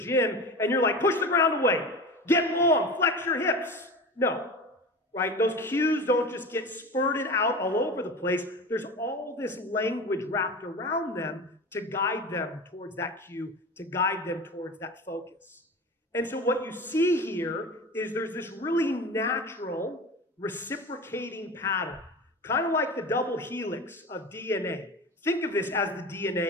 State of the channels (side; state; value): both; normal; correlation 0.31